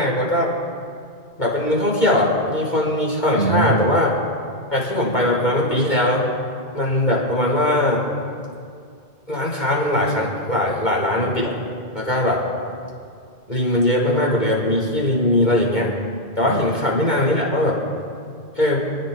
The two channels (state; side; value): late; right; 2.2 ms